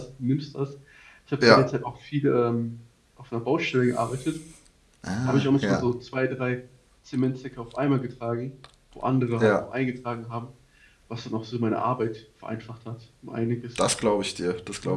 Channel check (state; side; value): identical; both; correlation 1.00